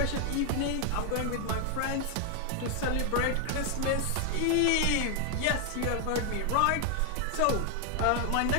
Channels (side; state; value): both; different; correlation 0.00